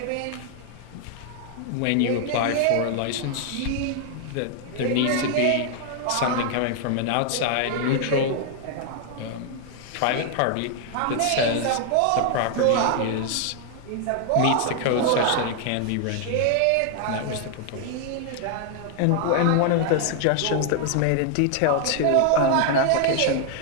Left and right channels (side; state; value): both; different; correlation 0.00